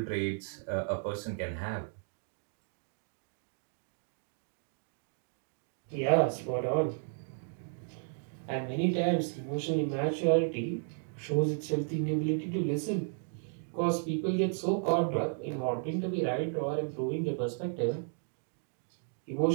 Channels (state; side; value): silent; left; 55 dB below the other